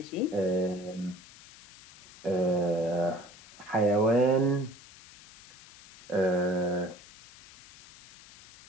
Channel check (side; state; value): left; noise; hiss, 21 dB below the sound